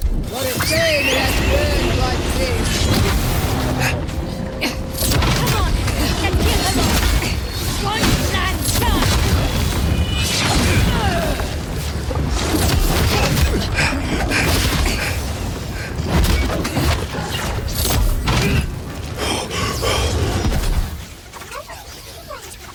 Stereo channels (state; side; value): identical; both; correlation 1.00